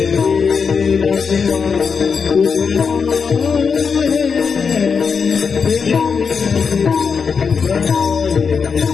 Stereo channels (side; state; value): right; quieter; 5.8 dB